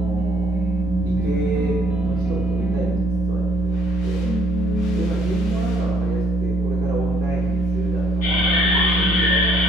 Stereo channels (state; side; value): noise; left; rumble, 23 dB below the sound